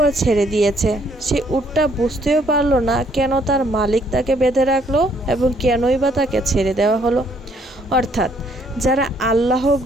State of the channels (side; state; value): both; normal; correlation 0.67